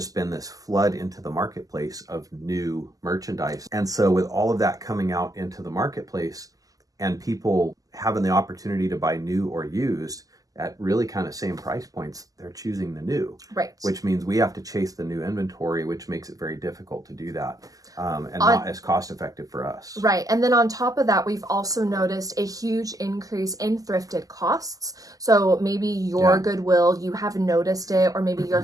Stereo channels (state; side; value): late; left; 0.17 ms